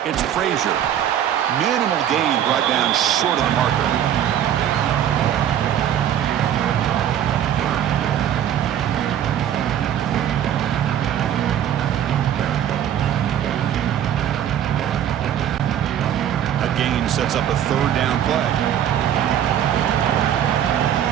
it's Frazier. Minimal gain brought down short of the marker. A gain sets up a 3rd down play.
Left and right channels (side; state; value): left; quieter; 10.3 dB